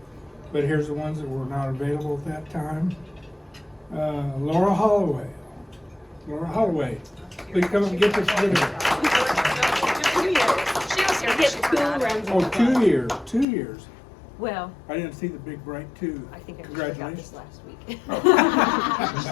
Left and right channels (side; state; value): right; drops out; at 13.5 s